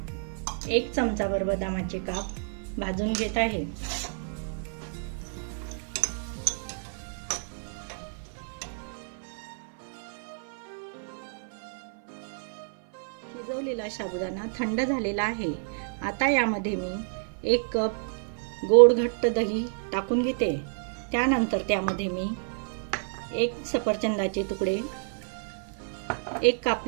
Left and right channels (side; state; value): left; silent; 55 dB below the other